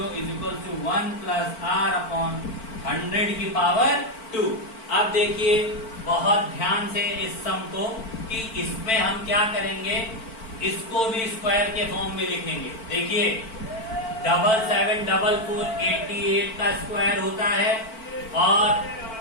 is equal to 1 plus R upon 100 की पावर 2। अब देखिए बहुत ध्यान से इस सम को कि इसमें हम क्या करेंगे, इसको भी स्क्वायर के फॉर्म में लिखेंगे। देखिए 7744 88 का स्क्वायर होता है और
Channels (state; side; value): late; right; 4.5 ms